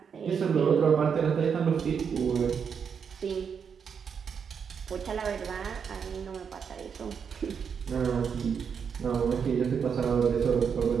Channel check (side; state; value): left; quieter; 6.8 dB